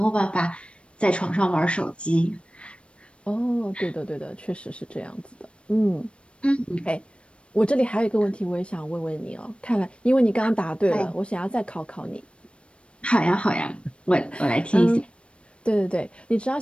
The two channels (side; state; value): right; late; 0.059 ms